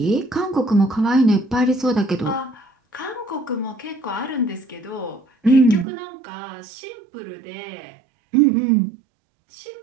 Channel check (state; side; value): drops out; left; at 5.9 s